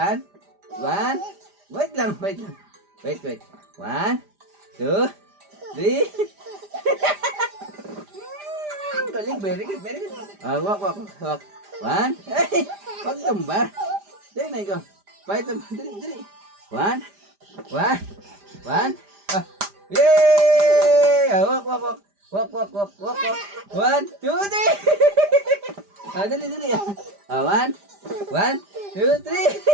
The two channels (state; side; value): late; left; 5.0 ms